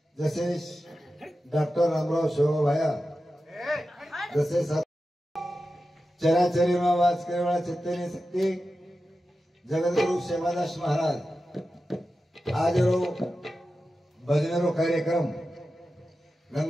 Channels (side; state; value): both; normal; correlation 0.92